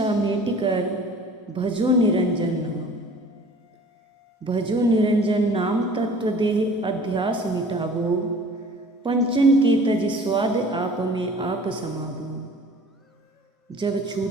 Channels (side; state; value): both; normal; correlation 0.47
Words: मेट कर भजो निरंजन नाम। भजो निरंजन नाम तत्व देह अध्यास मिटावो, पंचन के तज स्वाद आप में आप समावो। जब